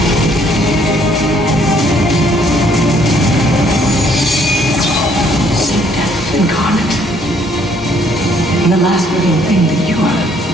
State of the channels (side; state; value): both; normal; correlation 0.65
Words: Incarnate. And the last living thing that you are